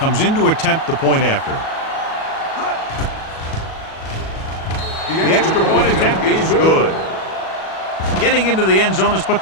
in to attempt the point after. The extra point attempt is good. Getting into the end zone has put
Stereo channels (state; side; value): late; right; 37 ms